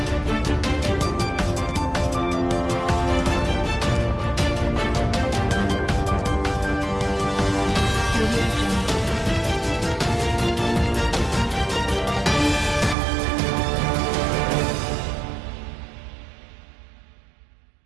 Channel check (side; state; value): left; drops out; at 13.0 s